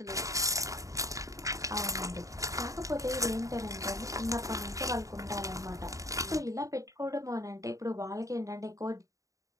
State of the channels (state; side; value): late; left; 0.16 ms